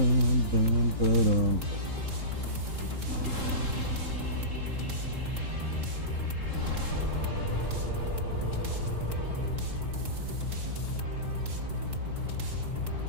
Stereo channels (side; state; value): left; late; 3.8 ms